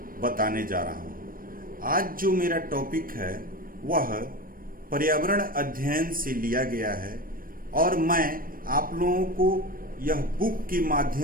बताने जा रहा हूँ। आज जो मेरा टॉपिक है वह पर्यावरण अध्ययन से लिया गया है और मैं आप लोगों को यह बुक के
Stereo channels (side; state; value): left; late; 0.41 ms